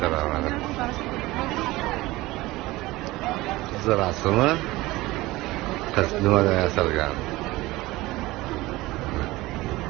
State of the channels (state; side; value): quieter; left; 19.4 dB